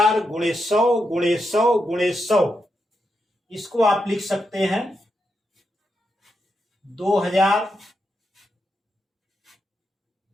गुणे 100 गुणे 100 गुणे 100। इसको आप लिख सकते हैं 2000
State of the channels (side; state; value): both; normal; correlation 0.84